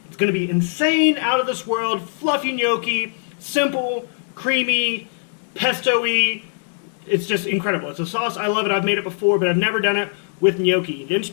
It's gonna be insane, out of this world, fluffy gnocchi, simple, creamy, pesto-y. It's just incredible. It's a sauce, I love it. I've made it before, but I've never done it with gnocchi. The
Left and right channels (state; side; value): silent; right; digital silence